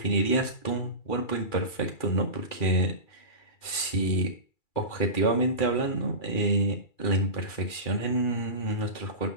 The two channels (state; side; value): late; right; 2.3 ms